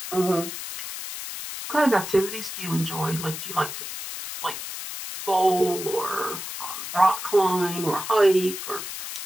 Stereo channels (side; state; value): left; noise; hiss, 8 dB below the sound